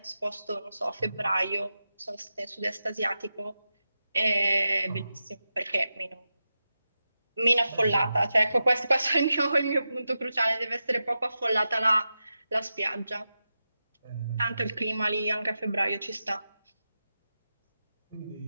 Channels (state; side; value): inverted; both; correlation -0.91